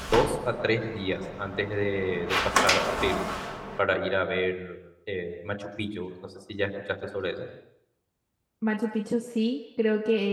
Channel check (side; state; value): both; identical; correlation 1.00